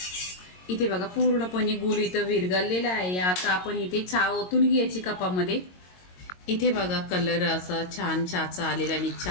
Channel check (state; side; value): late; right; 22 ms